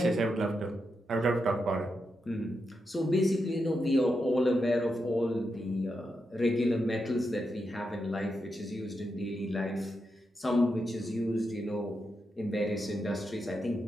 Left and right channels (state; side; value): normal; both; correlation 0.85